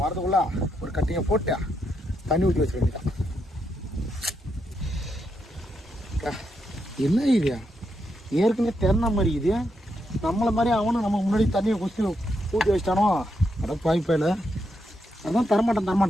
வரதுக்குள்ள ஒரு கட்டிங்கை போட்டு தண்ணி ஊற்றி வச்சுக்க வேண்டியதான். என்ன இது ஏற்கனவே திறன மாதிரி இது நம்மளை மாதிரி அவனும் நம்ம முன்னாடி தண்ணியை குச்சி ஊற்றி வச்சிட்டானோ? அட பாய்ப்பாயில் அதான்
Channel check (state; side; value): normal; both; correlation 0.81